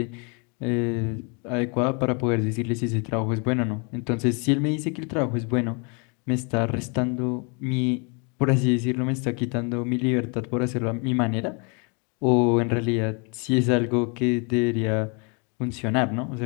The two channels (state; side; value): quieter; right; 34.4 dB